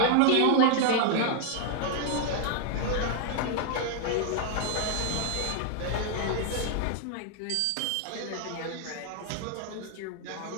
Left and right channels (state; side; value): different; both; correlation 0.00